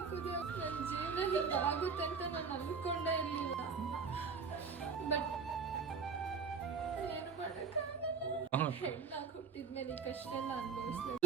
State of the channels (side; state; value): left; quieter; 5.5 dB